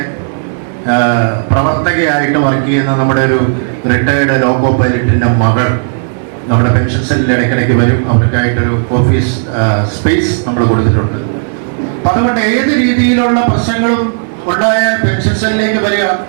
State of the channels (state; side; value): silent; left; digital silence